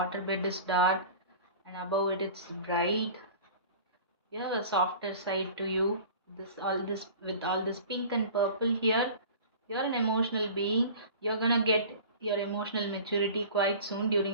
bed is dark, and above it, it's bright. You have a softer side to you. This with all this pink and purple here. You're an emotional being. You're gonna get your emotional maturity quite soon.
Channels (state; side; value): inverted; both; correlation -0.40